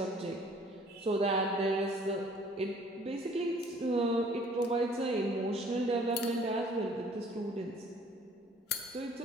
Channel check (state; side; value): normal; both; correlation 0.55